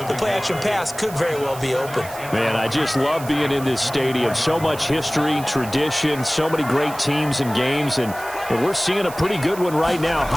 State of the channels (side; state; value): right; noise; hiss, 15 dB below the sound